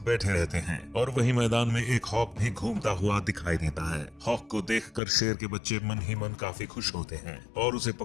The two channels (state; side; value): drops out; right; at 5.0 s